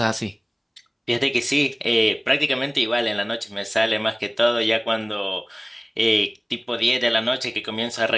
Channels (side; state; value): both; identical; correlation 1.00